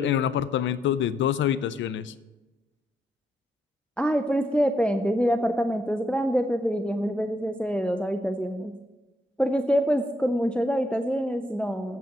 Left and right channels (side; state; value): both; normal; correlation 0.76